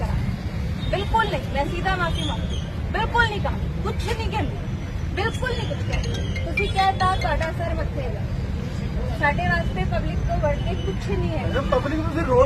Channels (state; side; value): identical; both; correlation 1.00